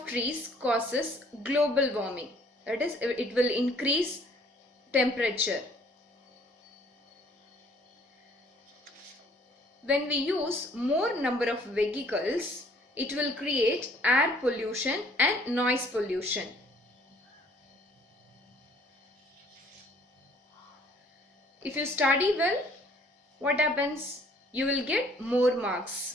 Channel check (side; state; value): both; normal; correlation 0.59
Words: trees causes global warming. That is, it will increase temperature. When we use more number of vehicles, it will create air pollution and noise pollution. If you study well, what happens? You will get more marks.